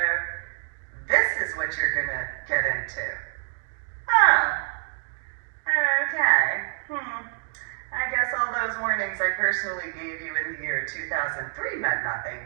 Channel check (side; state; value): left; silent; 60 dB below the other